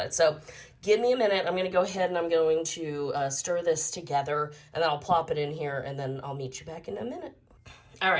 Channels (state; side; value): identical; both; correlation 1.00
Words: it. So give me a minute. I'm going to go ahead and I'm going to stir this together, and then I'll plop it in here, and then I'll meet you back in a minute. All